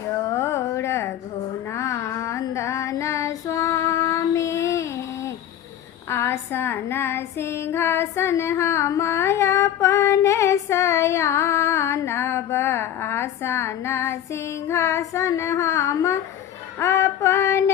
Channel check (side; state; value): right; quieter; 10.6 dB